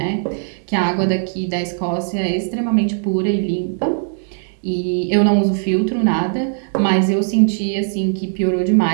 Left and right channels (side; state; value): left; silent; 67 dB below the other